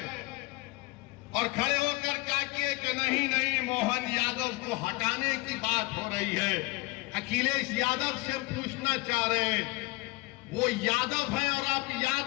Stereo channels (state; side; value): quieter; right; 23.2 dB